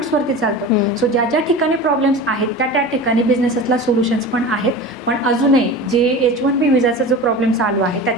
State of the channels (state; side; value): normal; both; correlation 0.32